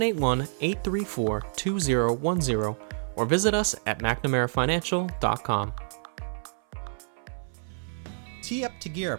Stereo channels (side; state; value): left; silent; 58 dB below the other